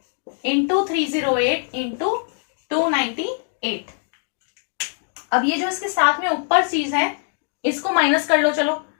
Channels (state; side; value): silent; right; digital silence